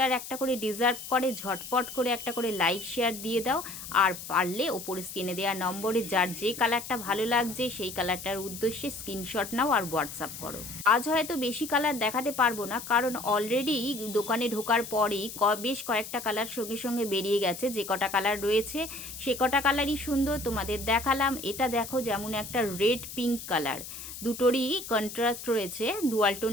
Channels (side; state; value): left; noise; hiss, 11 dB below the sound